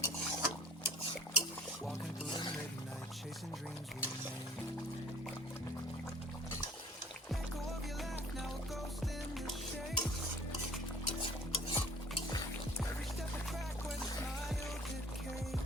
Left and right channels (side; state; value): both; normal; correlation 0.49